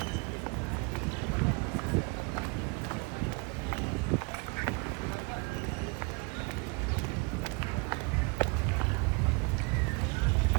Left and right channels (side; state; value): left; quieter; 30.2 dB